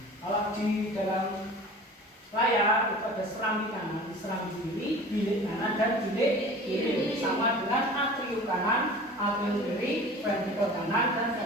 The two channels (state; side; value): normal; both; correlation 0.40